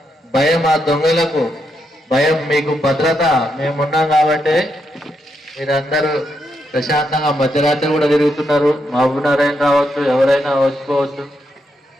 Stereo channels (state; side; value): normal; both; correlation 0.81